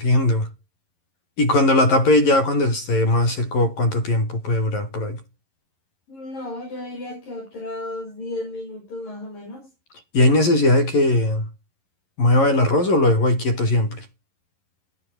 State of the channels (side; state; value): right; late; 11 ms